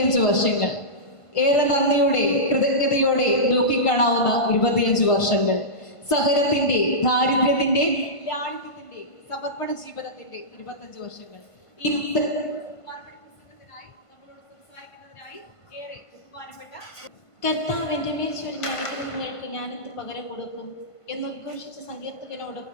വർഷങ്ങൾ, ഏറെ നന്ദിയോടെ കൃതജ്ഞതയോടെ നോക്കിക്കാണാവുന്ന 25 വർഷങ്ങൾ, സഹനത്തിന്റെ, ദാരിദ്ര്യത്തിന്റെ, ലാളിത്യത്തിന്റെ, സമർപ്പണ ജീവിതത്തിന്റെ 25 വർഷങ്ങൾ. ഈ പുസ്തകത്തിനായി നമ്മളോട് സംസാരിക്കുന്നതിനായി ഏറെ ബഹുമാനപ്പെട്ട കർത്താവ് എൻ്റെ മേൽ ചൊരിഞ്ഞ അനുഗ്രഹങ്ങൾക്ക് ഞാനെന്ത് പകരം കൊടുക്കും എന്നുദ്ഘോഷിച്ച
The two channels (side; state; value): right; late; 1.5 ms